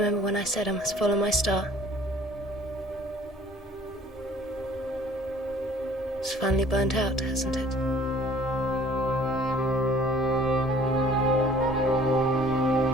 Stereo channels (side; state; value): both; normal; correlation 0.52